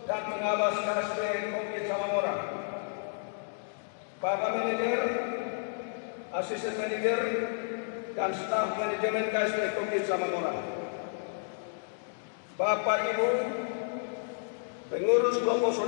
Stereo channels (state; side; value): silent; right; digital silence